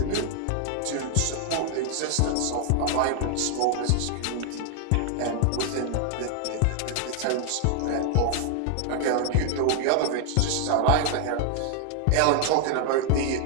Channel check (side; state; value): both; different; correlation 0.00